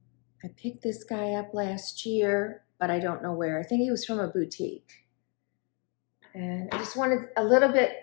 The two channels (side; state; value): right; quieter; 36.1 dB